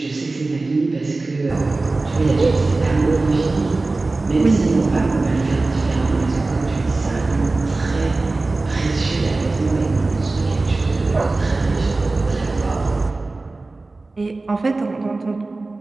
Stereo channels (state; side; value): quieter; left; 3.3 dB